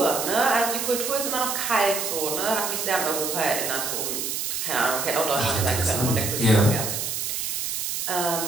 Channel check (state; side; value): noise; right; hiss, 2 dB below the sound